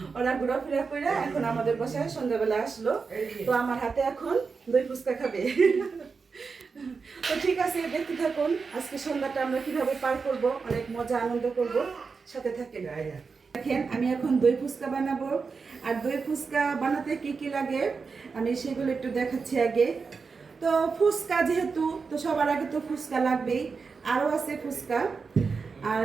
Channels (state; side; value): quieter; left; 5.0 dB